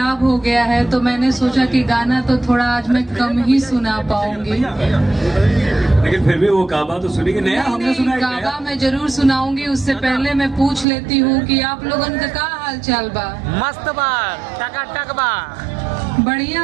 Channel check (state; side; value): drops out; left; at 10.9 s